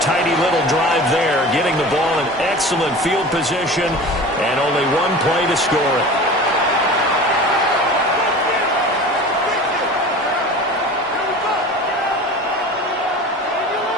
little drive there, getting the ball in excellent field position, and only one play to score it.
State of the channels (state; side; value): normal; both; correlation 0.37